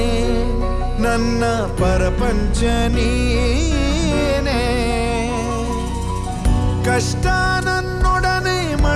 ನನ್ನ ಪರಪಂಚ ನೀನೇ ಕಷ್ಟ ನನ್ನೊಡನೆ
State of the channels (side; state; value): both; identical; correlation 1.00